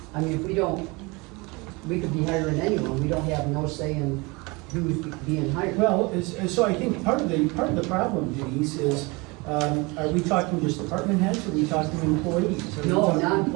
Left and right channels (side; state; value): left; quieter; 26.2 dB